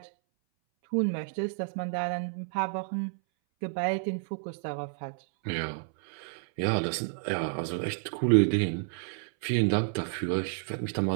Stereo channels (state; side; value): silent; left; 58 dB below the other